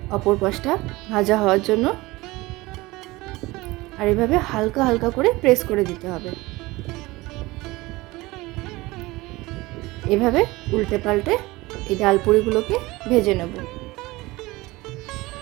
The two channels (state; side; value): quieter; left; 20.8 dB